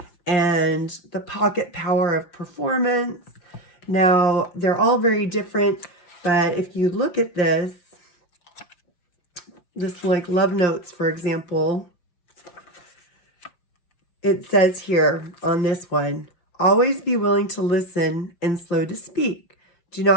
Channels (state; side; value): late; right; 5.6 ms